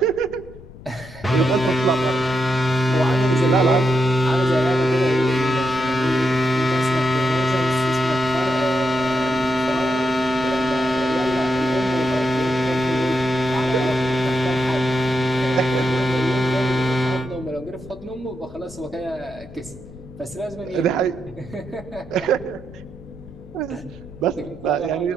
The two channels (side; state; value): left; noise; rumble, 18 dB below the sound